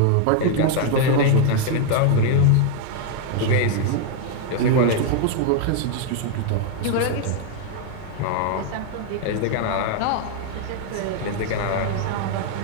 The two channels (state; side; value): different; both; correlation 0.00